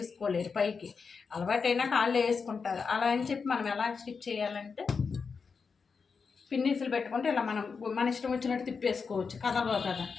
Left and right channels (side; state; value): right; quieter; 5.3 dB